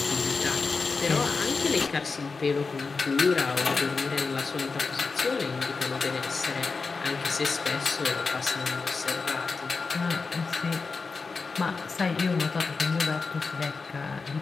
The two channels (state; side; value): quieter; right; 4.4 dB